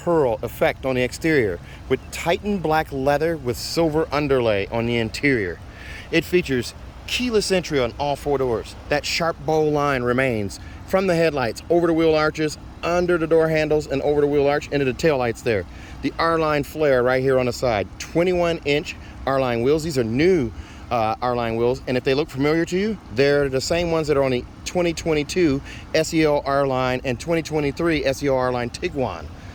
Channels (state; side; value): identical; both; correlation 1.00